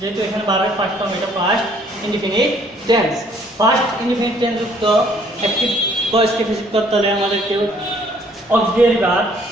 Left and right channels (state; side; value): normal; both; correlation 0.62